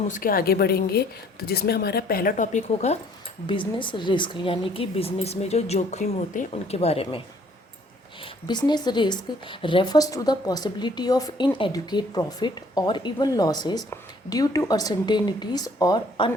उसके आगे बढ़ेंगे, तो जिसमें हमारा पहला टॉपिक होगा बिजनेस रिस्क, यानी कि बिजनेस में जो जोखिम होते हैं उनके बारे में। Business risk refers to the possibility of inadequate profit और even losses due to uncertainties और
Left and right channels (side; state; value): both; normal; correlation 0.60